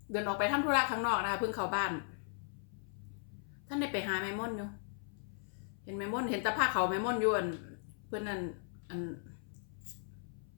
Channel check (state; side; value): silent; right; 53 dB below the other